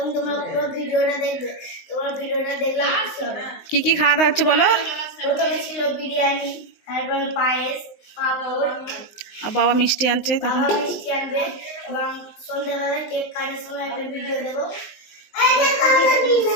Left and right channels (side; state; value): right; late; 19 ms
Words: তোমরা পুরো ভিডিওটা দেখবে। তোমরা ভিডিওটা দেখলে খুশি হবে। কি কি খাওয়া দাওয়া হচ্ছে বলো? প্রথমে ছিল বিরিয়ানি, তারপরে পায়েস, পাঁপড়, আর বাবা মিষ্টি আনছে, তখন বাবা মিষ্টি আনবে এবং সন্ধ্যাবেলা কেক কাটার সময় একটা ভিডিও দেবো।